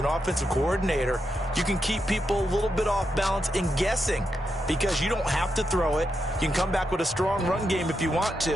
offensive coordinator, you can keep people a little bit off balance and guessing because you don't have to throw it. You can come back with a strong run game if you want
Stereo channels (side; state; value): both; normal; correlation 0.84